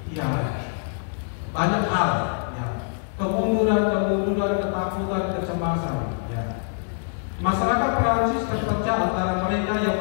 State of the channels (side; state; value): right; silent; digital silence